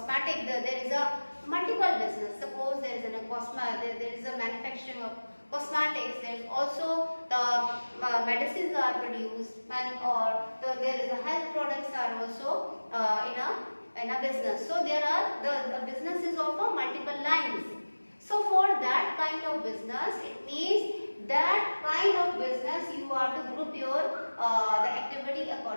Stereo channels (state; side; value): inverted; both; correlation -1.00